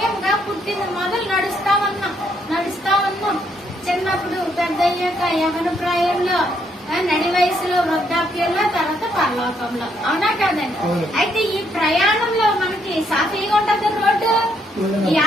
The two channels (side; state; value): both; normal; correlation 0.73